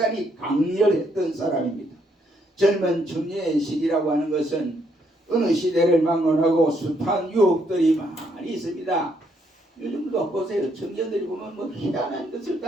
강렬했던 사람입니다. 젊은 청년의 시기라고 하는 것은 어느 시대를 막론하고 숱한 유혹들이 많이 있습니다. 요즘도 보세요. 청년들이 보면 뭐 희한한 것을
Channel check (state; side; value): normal; both; correlation 0.72